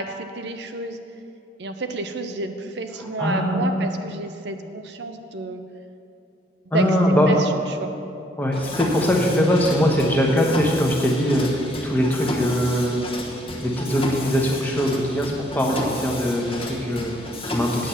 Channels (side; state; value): both; normal; correlation 0.66